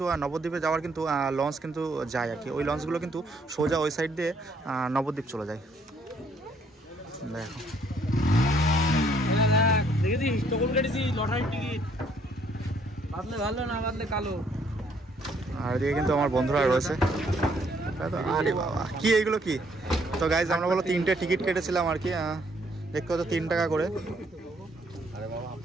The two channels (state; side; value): normal; both; correlation 0.67